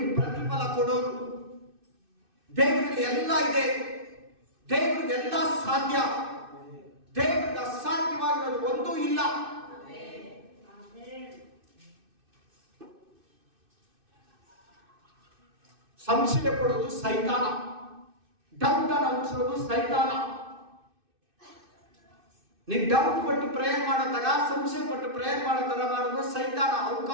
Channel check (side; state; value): left; late; 2.6 ms